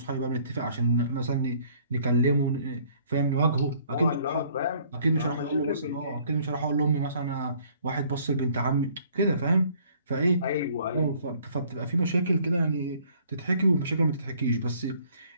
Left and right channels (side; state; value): both; inverted; correlation -0.59